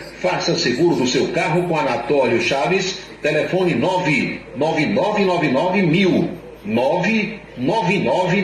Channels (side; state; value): both; identical; correlation 1.00